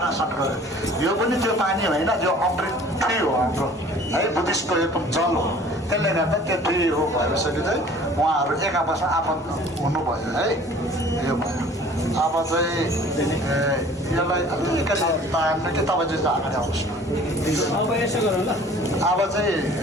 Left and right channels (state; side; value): normal; both; correlation 0.49